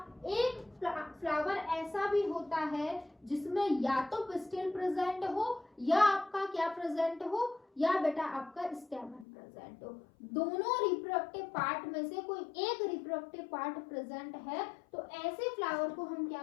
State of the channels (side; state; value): right; drops out; at 9.2 s